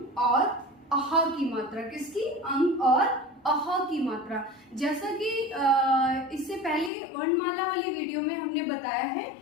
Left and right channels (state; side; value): drops out; right; at 6.9 s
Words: और अहा की मात्रा। किसकी? अंग और अहा की मात्रा। जैसा कि इससे पहले वर्णमाला वाली वीडियो में हमने बताया है